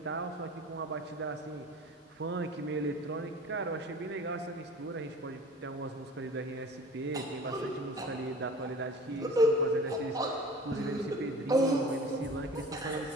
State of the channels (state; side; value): normal; both; correlation 0.41